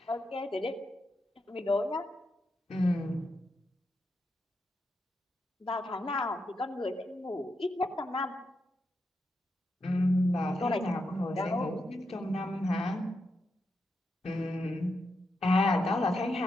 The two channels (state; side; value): normal; both; correlation 0.84